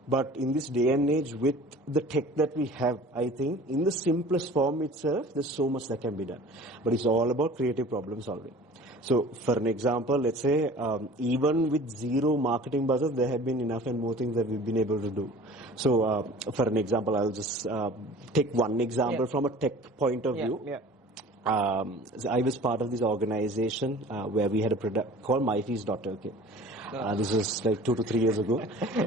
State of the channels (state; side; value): normal; both; correlation 0.44